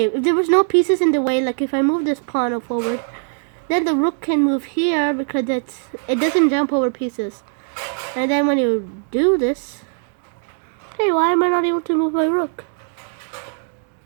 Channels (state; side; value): silent; left; 59 dB below the other